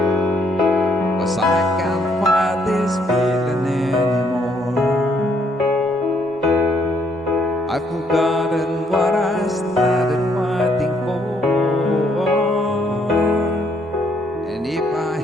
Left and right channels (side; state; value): both; normal; correlation 0.69